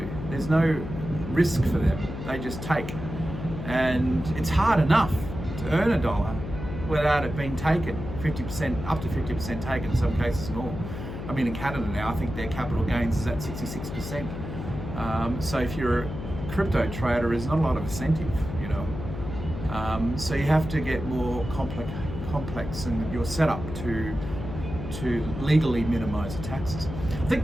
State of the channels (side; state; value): left; noise; hum, 7 dB below the sound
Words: There's no risk for them, they just take. And it's hard enough to earn $1 without it being taken, 50%, up to 50% taken, in some cases more. I mean, in Canada now, I think their capital gains is at 66%. So if you're a crypto trader, there's not a lot of incentive, you know. So you have to get more complex in your setup to legally minimize the taxes. I think